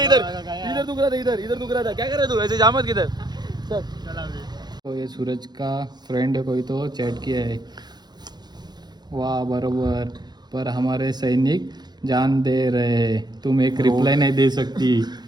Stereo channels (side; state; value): left; late; 0.20 ms